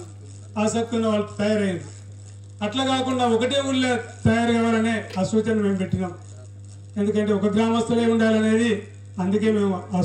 ఆసక్తి ఉన్న వాళ్ళు తయారైంది. అట్లా కాకుండా ఒకటే ఊళ్ళో తయారు కావాలనే ఆ సూచన మేము పెట్టినాం. ఎందుకంటే ఒక గ్రామస్తులే ఉండాలనేది, అందుకే మేము ఆ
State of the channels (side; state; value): both; identical; correlation 1.00